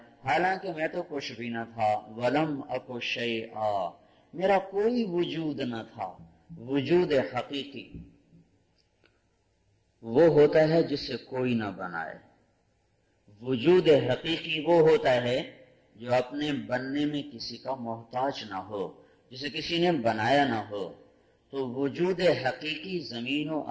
حالانکہ میں تو کچھ بھی نہ تھا. ولم اک شیئا، میرا کوئی وجود نہ تھا. وجود حقیقی وہ ہوتا ہے جسے کوئی نہ بنائے. وجود حقیقی وہ ہوتا ہے جو اپنے بننے میں کسی کا محتاج نہ ہو، جسے کسی نے بنایا نہ ہو. تو وجود حقیقی زمین و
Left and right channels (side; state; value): both; identical; correlation 1.00